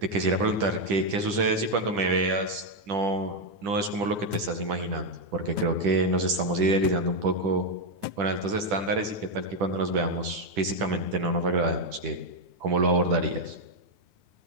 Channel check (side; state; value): left; late; 10 ms